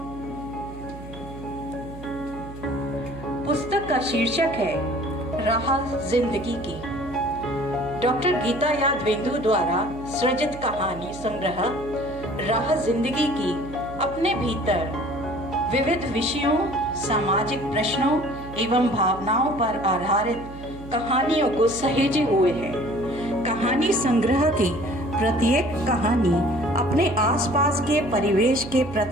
पुस्तक का शीर्षक है राह जिंदगी की। डॉक्टर गीता यादवेंदु द्वारा सृजित कहानी संग्रह राह जिंदगी की अपने भीतर विविध विषयों, सामाजिक प्रश्नों एवं भावनाओं पर आधारित कहानियों को सहेजे हुए है। कहानी संग्रह की प्रत्येक कहानी अपने आसपास के परिवेश के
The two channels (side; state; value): right; noise; hum, 14 dB below the sound